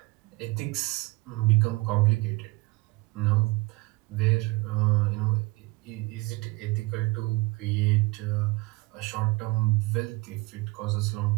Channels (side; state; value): left; quieter; 22.5 dB